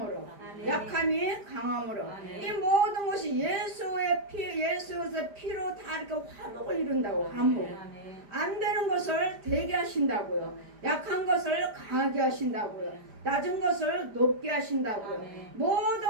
약함이 강함으로, 이 모든 것이 예수의 피, 예수의 피로 다 이렇게 화목을 이룬다고. 화목. 안 되는 것을 되게 하신다고요. 약한 것을 강하게 하신다고요. 낮은 것을 높게 하신다고요.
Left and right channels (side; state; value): left; late; 5.0 ms